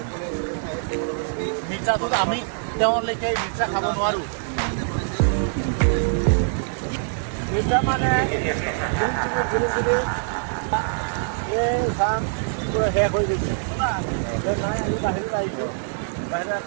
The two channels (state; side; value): silent; left; 58 dB below the other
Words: মিৰ্চাটোত আমি তেওঁলৈকে মিৰ্চা খাব নোৱাৰোঁ মিৰ্চা মানে এই চাম পুৰা শেষ হৈ গৈছে নাই আমি বাহিৰত আহিছোঁ বাহিৰত